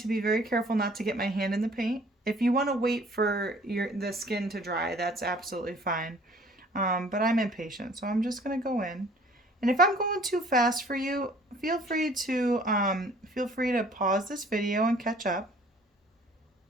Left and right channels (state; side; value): normal; both; correlation 0.54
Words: be very careful not to get my hand in the paint. If you want to wait for the skin to dry, that's absolutely fine. But I'm impatient, so I'm just gonna go in. And if I'm going too fast for you, feel free to pause this video and catch up.